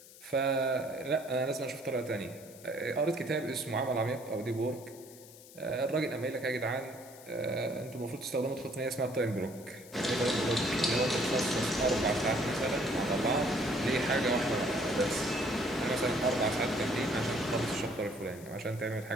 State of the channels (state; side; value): noise; left; hiss, 20 dB below the sound